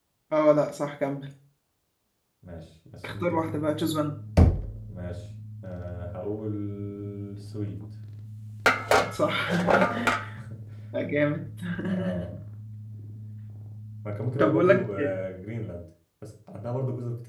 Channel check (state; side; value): identical; both; correlation 1.00